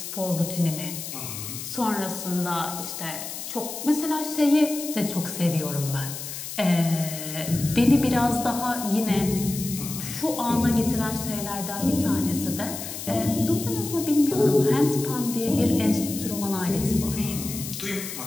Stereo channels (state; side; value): noise; left; hiss, 8 dB below the sound